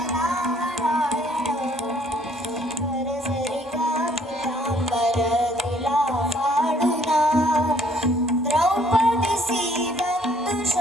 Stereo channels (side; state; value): both; normal; correlation 0.63